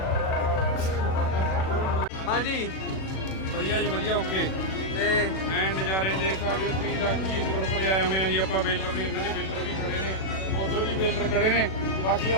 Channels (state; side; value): late; right; 37 ms